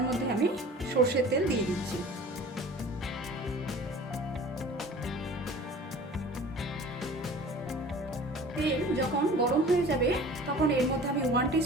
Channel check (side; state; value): both; normal; correlation 0.43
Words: মধ্যে আমি সর্ষের তেল দিয়ে দিচ্ছি। তেল যখন গরম হয়ে যাবে তখন এর মধ্যে আমি 1